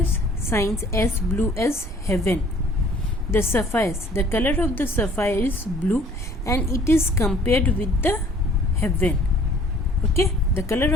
shines as blue as heaven. The sapphires, the color of the sapphire is blue, and it is compared with the heaven. Okay, the color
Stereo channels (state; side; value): normal; both; correlation 0.55